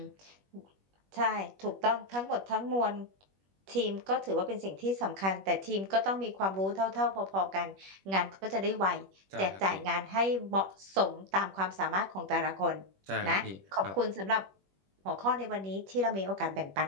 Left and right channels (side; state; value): left; late; 21 ms